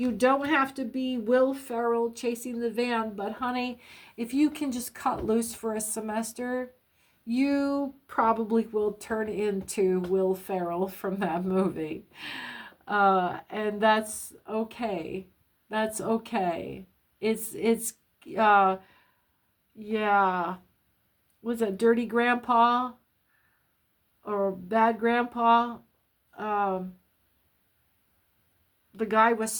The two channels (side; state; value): both; identical; correlation 1.00